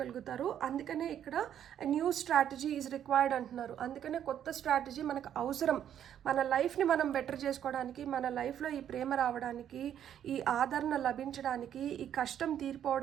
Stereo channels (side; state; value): left; quieter; 9.9 dB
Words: అందుకనే ఇక్కడ న్యూ స్ట్రాటజీ ఈజ్ రిక్వైర్డ్ అంటున్నారు. అందుకనే కొత్త స్ట్రాటజీ మనకు అవసరం. మన లైఫ్ని మనం బెటర్ చేసుకోవడానికి, మన లైఫ్లో ఈ ప్రేమ రావడానికి, ఈ ఆదరణ లభించడానికి, ఈ కష్టం